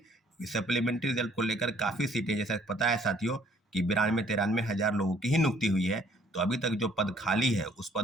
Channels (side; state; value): both; normal; correlation 0.61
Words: सप्लीमेंट्री रिजल्ट को लेकर काफ़ी सीटें, जैसा पता है साथियों कि 92-93 हज़ार लोगों की ही नियुक्ति हुई है। तो अभी तक जो पद खाली है उस